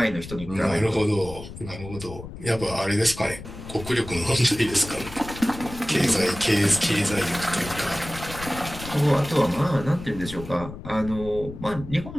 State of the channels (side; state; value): left; noise; rumble, 12 dB below the sound